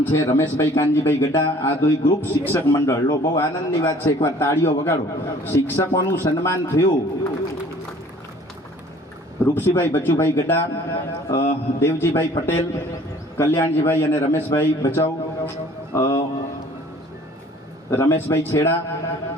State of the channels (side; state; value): both; normal; correlation 0.52